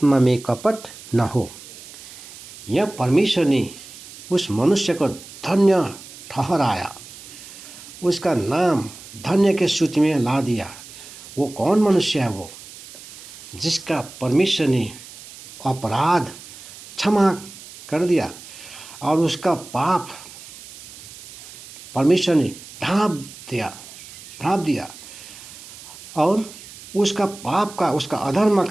में कपट न हो। यह परमेश्वर ने उस मनुष्य को धन्य ठहराया, उसका नाम धन्य के सूची में ला दिया। वो कौन मनुष्य है? वो जिसका परमेश्वर ने अपराध क्षमा कर दिया और उसका पाप परमेश्वर ने ढांप दिया और उसका पाप का, उसका अधर्म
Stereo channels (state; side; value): noise; right; hiss, 17 dB below the sound